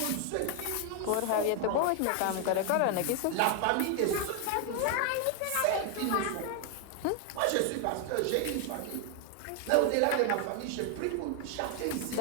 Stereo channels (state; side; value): different; both; correlation 0.00